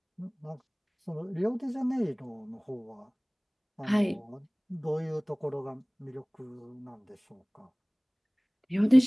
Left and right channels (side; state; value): both; identical; correlation 1.00